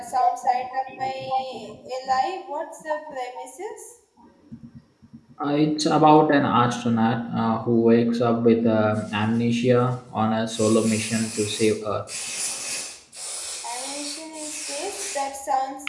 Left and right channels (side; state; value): both; identical; correlation 1.00